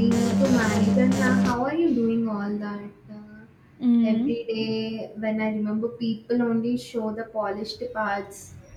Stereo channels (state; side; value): identical; both; correlation 1.00